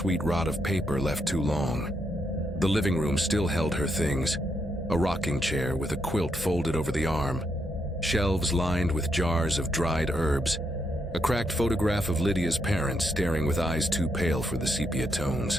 rot of paper left too long. The living room still held her things, a rocking chair with a quilt folded over the arm, shelves lined with jars of dried herbs, a cracked photograph of Lydia's parents staring with eyes too pale for the sepia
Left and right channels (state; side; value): normal; both; correlation 0.79